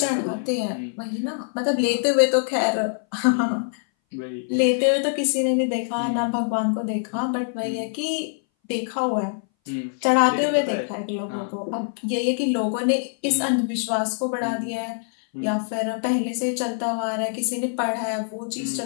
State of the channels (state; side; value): silent; right; 59 dB below the other